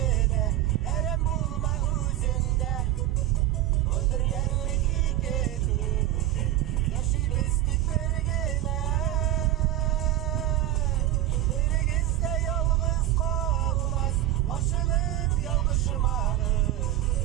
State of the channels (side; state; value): left; quieter; 14.0 dB